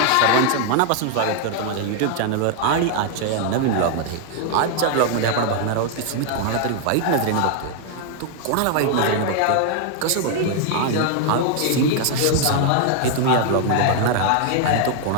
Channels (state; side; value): different; both; correlation 0.00